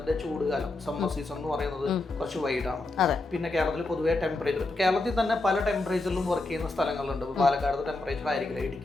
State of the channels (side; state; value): right; quieter; 3.0 dB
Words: ചൂടുകാലം സമ്മർ സീസൺ എന്ന് പറയുന്നത് കുറച്ച് വൈഡാണ്. പിന്നെ കേരളത്തിൽ പൊതുവേ ടെമ്പറേച്ചർ, കേരളത്തിൽ തന്നെ പല ടെമ്പറേച്ചറിലും വർക്ക് ചെയ്യുന്ന സ്ഥലങ്ങളുണ്ട്. പാലക്കാട് ടെമ്പറേച്ചർ ആയിരിക്കില്ല